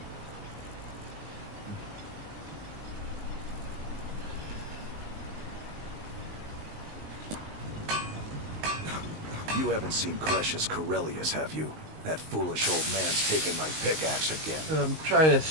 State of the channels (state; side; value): late; left; 19 ms